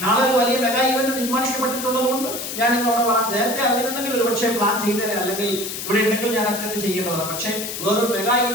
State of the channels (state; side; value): noise; left; hiss, 6 dB below the sound